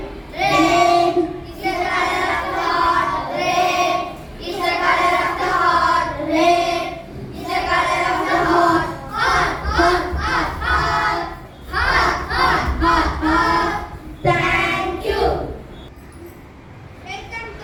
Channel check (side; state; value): both; identical; correlation 1.00